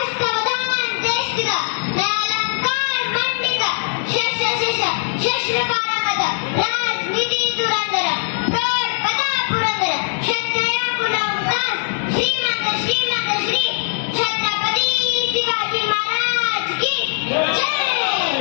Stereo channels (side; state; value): right; silent; digital silence